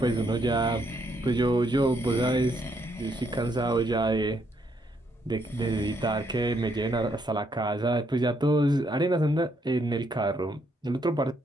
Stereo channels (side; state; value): both; normal; correlation 0.74